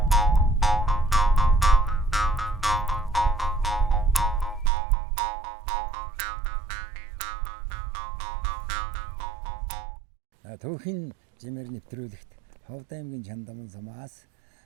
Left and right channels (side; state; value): left; drops out; at 4.7 s